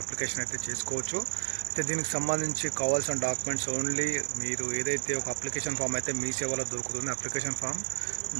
అప్లికేషన్ అయితే చేసుకోవచ్చు. అయితే దీనికి సంబంధించి కావాల్సిన డాక్యుమెంట్స్ ఓన్లీ మీరు ఏదైతే ఒక అప్లికేషన్ ఫామ్ అయితే మీ సేవలో దొరుకుతుంది, అప్లికేషన్ ఫామ్,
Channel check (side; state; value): left; silent; digital silence